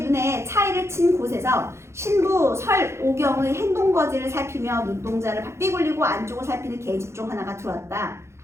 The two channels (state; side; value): late; left; 0.13 ms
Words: 눈에 차이를 친 곳에서 신부 설오경의 행동거지를 살피며 눈동자를 바삐 굴리고 안쪽을 살피는 계집종 하나가 들어왔다.